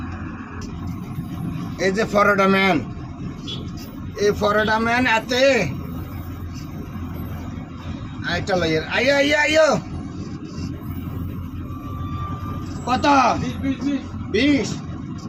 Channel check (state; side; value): identical; both; correlation 1.00